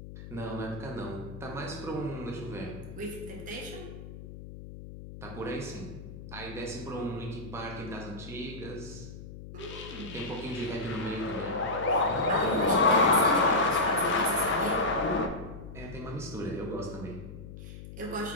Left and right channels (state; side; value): noise; left; hum, 12 dB below the sound